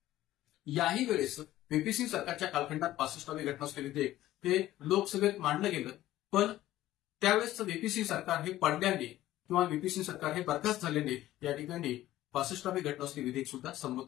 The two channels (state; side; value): quieter; right; 14.7 dB